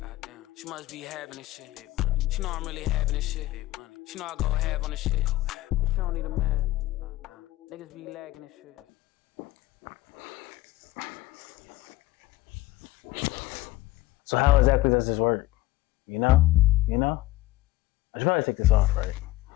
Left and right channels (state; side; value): quieter; right; 17.4 dB